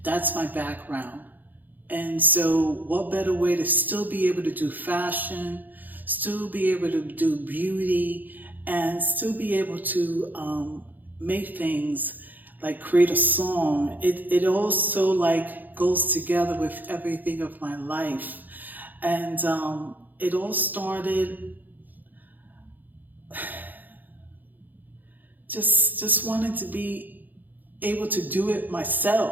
that's my background. And so what better way to still be able to do fashion, still be able to do beauty, and still be able to make things like create a song. It also like goes together with everything of my life. And it all started just wanting to be able to do it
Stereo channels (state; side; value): late; left; 0.085 ms